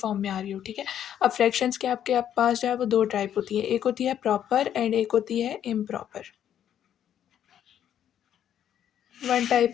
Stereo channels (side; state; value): right; quieter; 10.0 dB